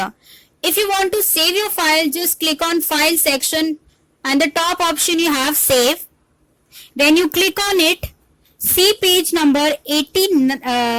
If you want to save your file, just click on file section and the top option you have save. When you click on it, see page number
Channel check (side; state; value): both; identical; correlation 1.00